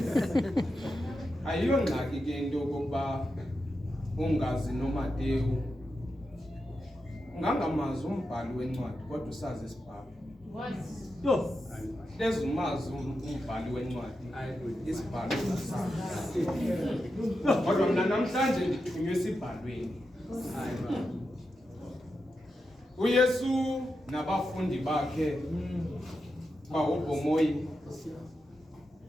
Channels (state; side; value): normal; both; correlation 0.88